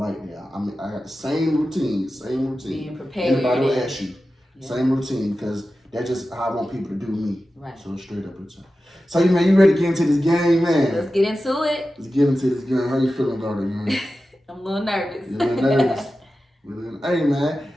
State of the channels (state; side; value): normal; both; correlation 0.93